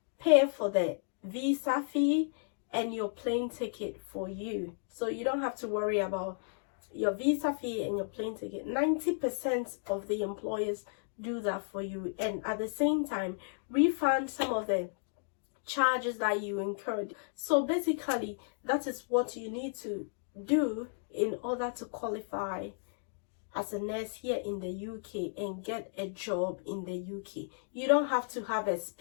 pay for the visa fee and your plane ticket for you, so you don't have to worry about your visa fee and your plane ticket. 90% of the employers do that for you, and at the same time refund some of the charges that you incurred. So basically, that is what you need to do in order to qualify as a nurse here in the UK and get a job in the UK. You don't have to have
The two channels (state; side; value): silent; right; digital silence